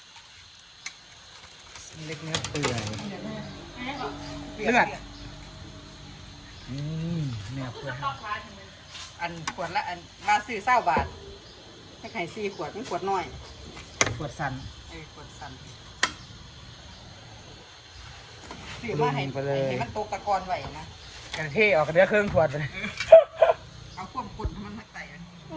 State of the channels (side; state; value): both; identical; correlation 1.00